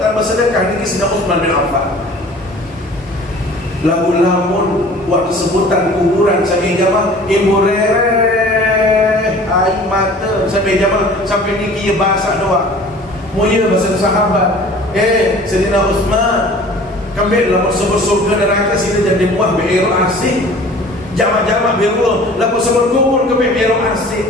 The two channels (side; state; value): both; normal; correlation 0.46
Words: tanpa sedekah ini Sayyidina Utsman bin Affan. Lamun waktu sebutan kuburan sampai jamaah ibu rere air mata sampai jamaah sampai niki bahasa doa. Mulia bahasa sahabat. Sayyidina Utsman kembali lamun sebut surga neraka sini jadi buah beiro asih. Jamaah-jamaah beiro lamun sebut kubur kembali beiro asih.